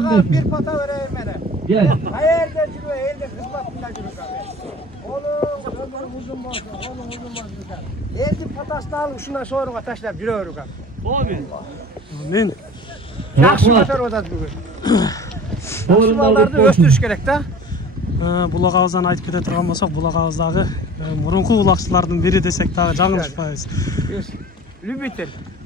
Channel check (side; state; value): both; normal; correlation 0.42